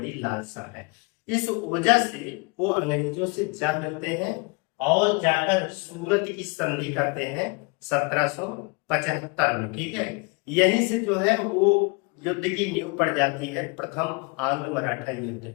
लालसा है। इस वजह से वो अंग्रेजों से जा मिलते हैं और जाकर सूरत की संधि करते हैं 1775 में। ठीक है, यहीं से जो है वो युद्ध की नींव पड़ जाती है, प्रथम आंग्ल मराठा युद्ध।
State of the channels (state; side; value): quieter; right; 29.8 dB